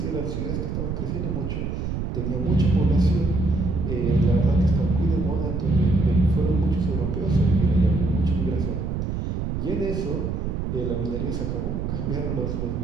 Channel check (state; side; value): noise; right; rumble, 3 dB below the sound